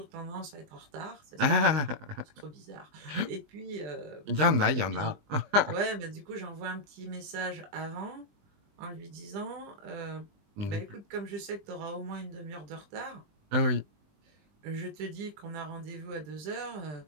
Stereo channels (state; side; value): late; left; 20 ms